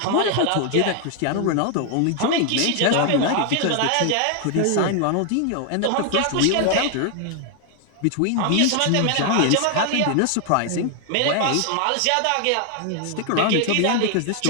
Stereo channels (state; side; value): different; both; correlation 0.00